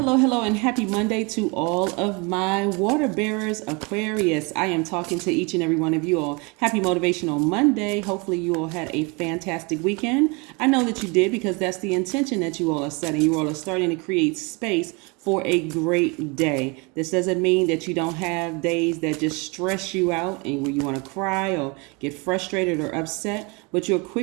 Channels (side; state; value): left; quieter; 29.4 dB